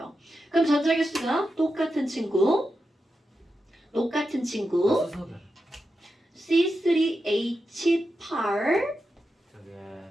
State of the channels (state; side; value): normal; both; correlation 0.89